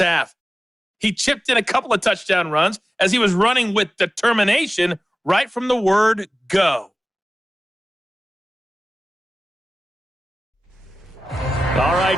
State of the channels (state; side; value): normal; both; correlation 0.96